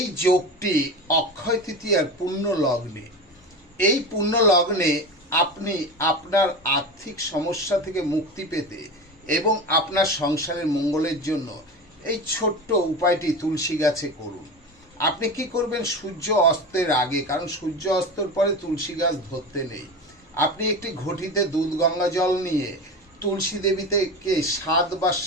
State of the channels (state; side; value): normal; both; correlation 0.26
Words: যোগটি অক্ষয় তৃতীয়ার পূর্ণ লগ্নে। এই পূর্ণ লগ্নে আপনি আপনার আর্থিক সমস্যা থেকে মুক্তি পেতে এবং আপনার সংসারের মঙ্গলের জন্য এই ছোট্ট উপায়টি তুলসী গাছে করুন। আপনি কি করবেন? সূর্য অস্তের আগে, কারণ সূর্য অস্তের পরে তুলসী গাছ ধরতে নেই, আপনি একটি ঘটিতে দুধ গঙ্গা জল নিয়ে তুলসী দেবীকে